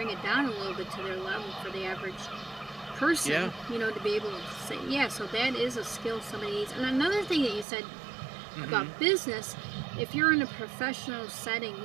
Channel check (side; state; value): left; drops out; at 7.7 s